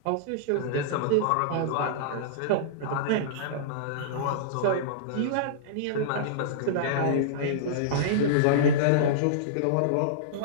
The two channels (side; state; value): both; different; correlation -0.03